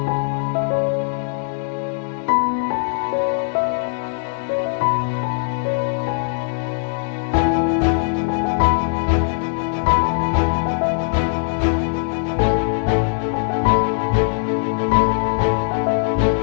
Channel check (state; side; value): silent; right; 64 dB below the other